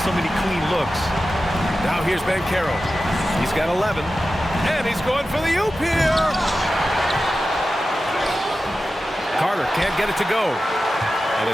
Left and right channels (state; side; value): normal; both; correlation 0.93